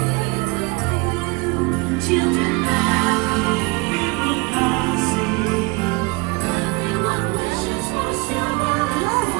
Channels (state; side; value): quieter; left; 27.0 dB